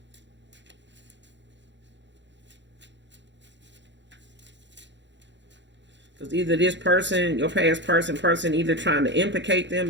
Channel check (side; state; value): left; late; 0.52 ms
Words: Because either this person, your past person either trying to implicate them